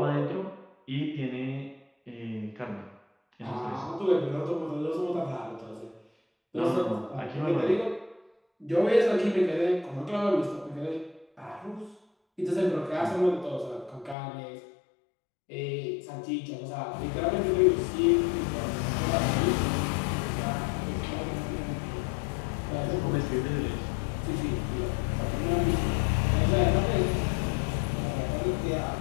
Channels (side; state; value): right; drops out; at 14.2 s